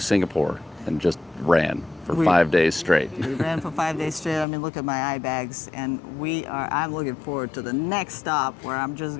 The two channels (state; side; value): drops out; right; at 4.5 s